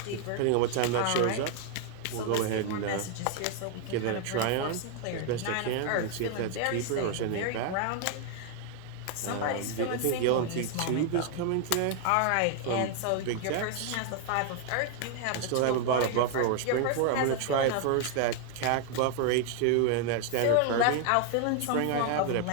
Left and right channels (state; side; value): different; both; correlation 0.00